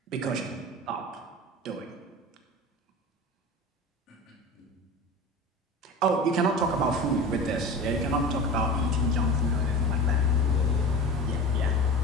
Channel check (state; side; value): normal; both; correlation 0.32